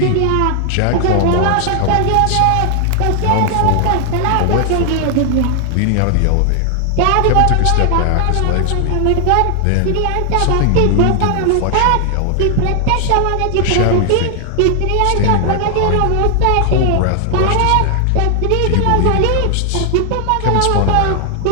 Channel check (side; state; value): both; different; correlation 0.00